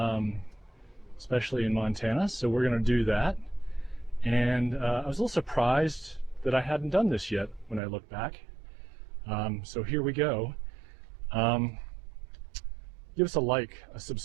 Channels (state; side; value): drops out; left; at 7.8 s